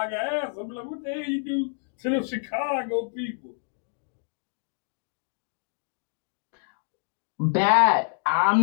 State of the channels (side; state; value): right; silent; 60 dB below the other